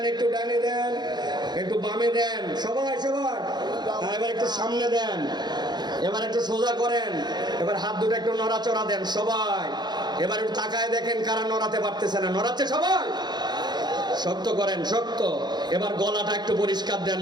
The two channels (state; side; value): late; left; 0.21 ms